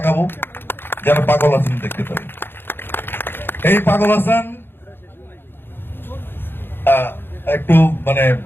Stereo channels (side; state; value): right; late; 0.10 ms